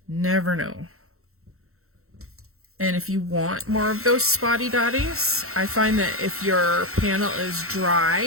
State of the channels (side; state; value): left; late; 0.63 ms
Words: Never know. And if you want more of those spotty dotties, I find that if your panel is